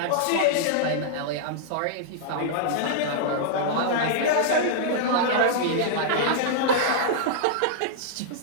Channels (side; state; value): both; different; correlation -0.01